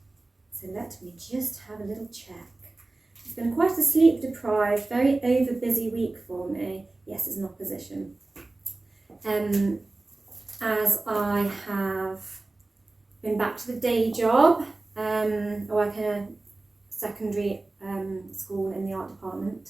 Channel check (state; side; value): quieter; left; 3.1 dB